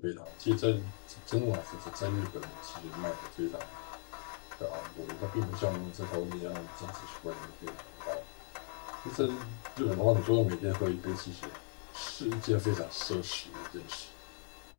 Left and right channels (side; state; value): right; silent; 53 dB below the other